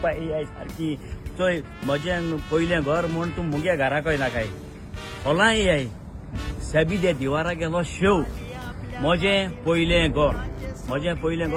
ए आय सारकी चोय म्हजें पयलें घर म्हूण तूं मुगे घराक येना काय होला ए आय साबी दे दिवारा गेलो शेव म्हजें पयलें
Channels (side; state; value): both; identical; correlation 1.00